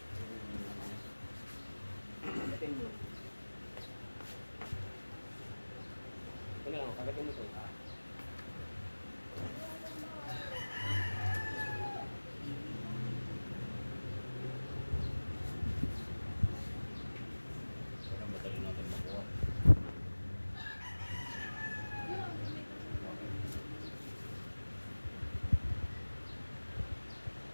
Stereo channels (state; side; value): inverted; both; correlation -1.00